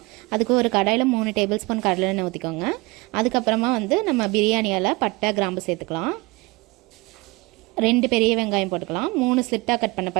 அதுக்கு ஒரு கடாயில் 3 டேபிள் ஸ்பூன் கடலை எண்ணெய் ஊற்றிக்கோங்க. அதுக்கப்புறமா நம்ம பிரியாணியால் பட்டை கிராம்பு சேர்த்துக்கலாம். 2 பெரிய வெங்காயம் போட்டுக்கலாம். 3 ஸ்லிட்டாக கட் பண்ண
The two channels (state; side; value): quieter; left; 24.4 dB